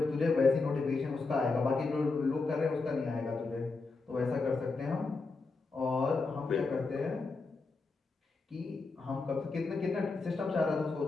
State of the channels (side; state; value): right; quieter; 3.9 dB